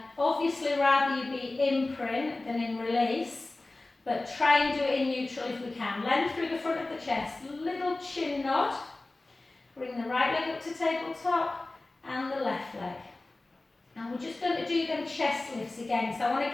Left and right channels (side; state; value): right; quieter; 3.0 dB